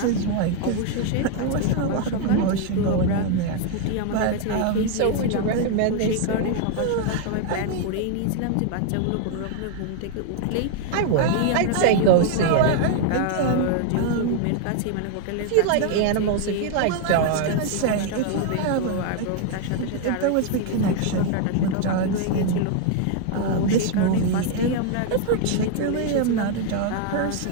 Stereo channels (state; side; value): different; both; correlation 0.00